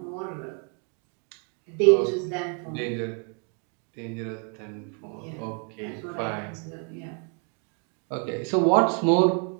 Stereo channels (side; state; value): left; quieter; 39.4 dB